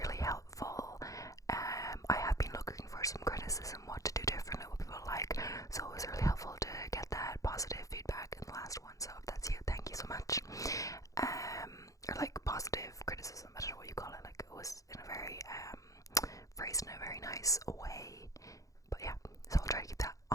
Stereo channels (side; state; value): right; late; 0.16 ms